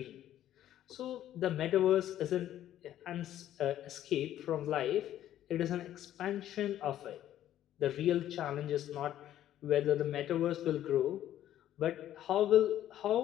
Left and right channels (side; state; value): right; quieter; 12.1 dB